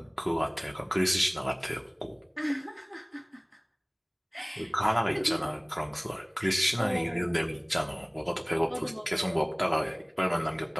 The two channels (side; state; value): both; identical; correlation 1.00